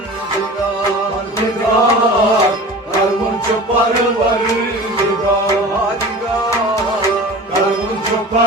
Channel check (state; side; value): normal; both; correlation 0.37